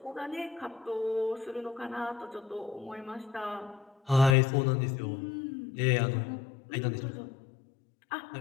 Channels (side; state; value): right; drops out; at 4.4 s